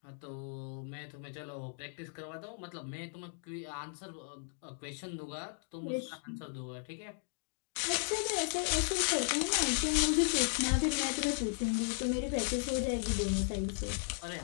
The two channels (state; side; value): silent; right; digital silence